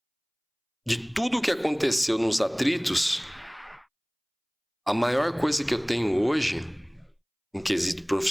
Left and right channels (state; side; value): identical; both; correlation 1.00